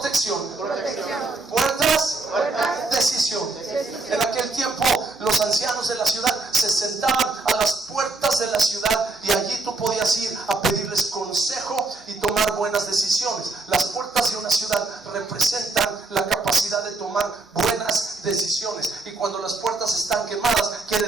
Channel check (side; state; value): left; quieter; 3.4 dB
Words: Puertas, decisión. En aquel tiempo los ancianos de la ciudad se sentaban a las puertas de la ciudad y allí tú podías ir a pedirles consejo y tomar buenas decisiones. Las puertas de una ciudad representan la capacidad de tomar buenas decisiones, y cuando las puertas están quemadas quiere